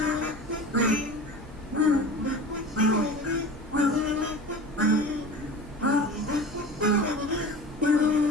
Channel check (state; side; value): normal; both; correlation 0.35